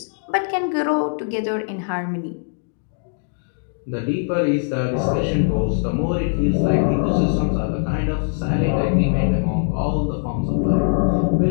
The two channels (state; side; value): silent; right; digital silence